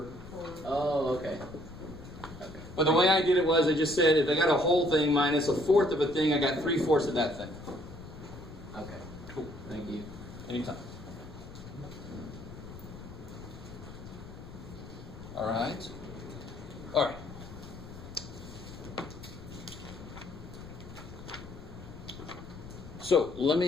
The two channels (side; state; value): left; noise; rumble, 15 dB below the sound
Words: Oh, okay. Okay. But the way I did it was I just said if I got a whole thing minus a fourth of a thing, I got 3/4 of that thing. Okay. Cool. Thank you. Anytime. All right. All right. So let